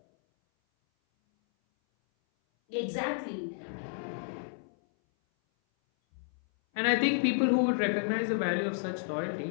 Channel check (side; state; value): right; silent; 57 dB below the other